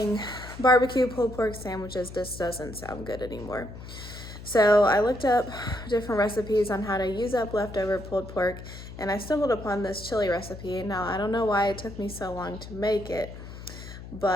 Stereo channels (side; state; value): left; noise; hum, 13 dB below the sound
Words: barbecue pulled pork sandwiches just doesn't sound good anymore. So I looked up different recipes on how to use up leftover pulled pork, and I stumbled upon this chili recipe. Now, I don't know why it took me so long to make it,